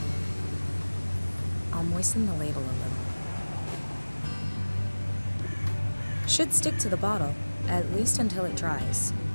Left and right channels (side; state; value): both; inverted; correlation -1.00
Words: I'll moisten the label a little. Should stick to the bottle, at least until it dries.